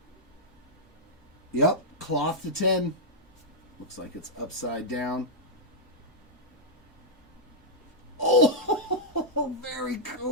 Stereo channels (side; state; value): both; normal; correlation -0.08